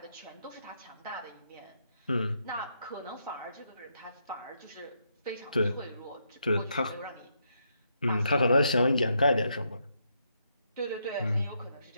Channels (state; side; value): inverted; both; correlation -0.78